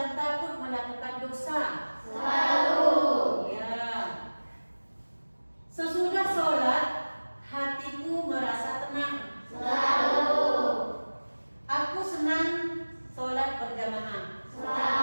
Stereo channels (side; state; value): both; inverted; correlation -1.00